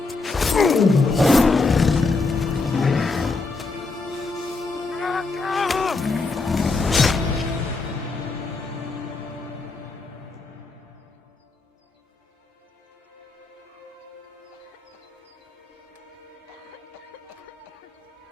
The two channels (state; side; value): quieter; right; 3.7 dB